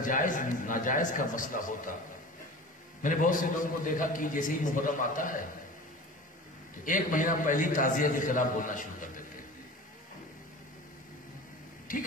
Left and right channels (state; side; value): normal; both; correlation 0.36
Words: جائز ناجائز کا مسئلہ ہوتا، میں نے بہت سے لوگوں کو دیکھا کہ جیسے ہی محرم آتا ہے تو ایک مہینہ پہلی تعزیہ کے خلاف بولنا شروع کر دیتے ہیں.